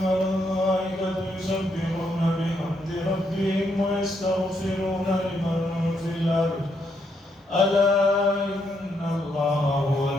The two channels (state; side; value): normal; both; correlation 0.77